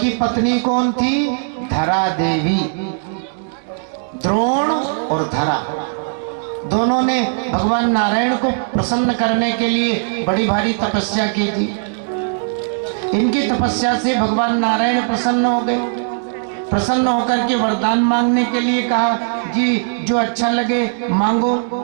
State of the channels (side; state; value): left; silent; digital silence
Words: पत्नी कौन थी? धरा देवी। द्रोण और धरा दोनों ने भगवान नारायण को प्रसन्न करने के लिए बड़ी भारी तपस्या की थी। इनकी तपस्या से भगवान नारायण प्रसन्न हो गए। प्रसन्न होकर के वरदान मांगने के लिए कहा, जी जो अच्छा लगे मांगो।